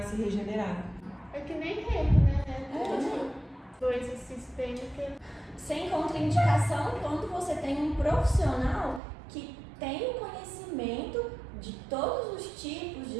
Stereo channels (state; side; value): drops out; left; at 9.0 s